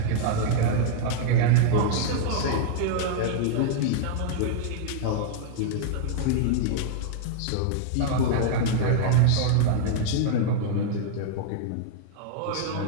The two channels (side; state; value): both; different; correlation -0.01